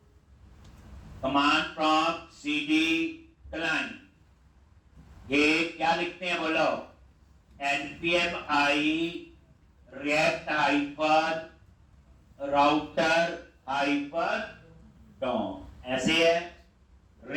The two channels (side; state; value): both; identical; correlation 1.00